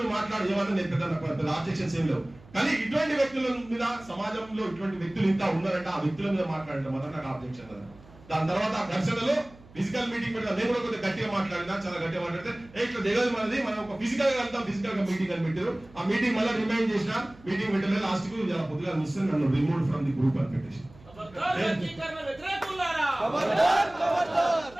మాట్లాడు ఏమన్నా, నేను పెద్ద ఆబ్జెక్షన్స్ ఏం లేవు, కానీ ఇటువంటి వ్యక్తుల మీద సమాజంలో ఇటువంటి వ్యక్తులు ఇంకా ఉన్నారంటే ఆ వ్యక్తుల మీద మాట్లాడటం మొదట నాకు ఆబ్జెక్షన్ కదా. దాని తర్వాత ఆ ఘర్షణలో ఫిజికల్ మీటింగ్ పెట్టిన నేను కూడా కొద్దిగా గట్టిగా మాట్లాడినా, చాలా గట్టిగా మాట్లాడితే ఇట్లా దిగదు మనది, మనం ఒక ఫిజికల్ గా వెళ్తాం, ఫిజికల్ గా మీటింగ్ అని పెట్టారు. ఆ మీటింగ్ మళ్ళీ రిమైండ్ చేసిన, మీటింగ్ పెట్టలేదు, లాస్ట్ కు పొద్దుగా మిస్ నన్ను రిమూవ్ ఫ్రమ్ ది గ్రూప్ అని పెట్టేసి.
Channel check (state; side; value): noise; right; hum, 23 dB below the sound